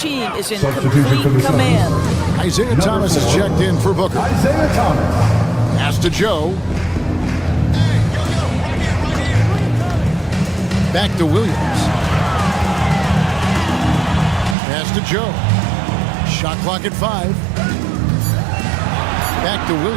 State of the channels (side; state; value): left; drops out; at 14.6 s